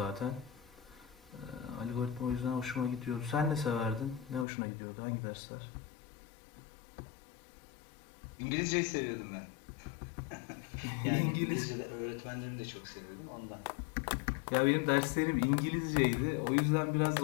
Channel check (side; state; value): right; drops out; at 4.5 s